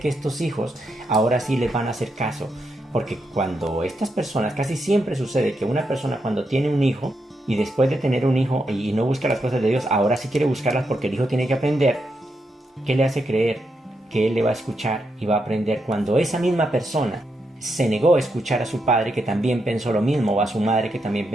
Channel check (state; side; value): normal; both; correlation 0.83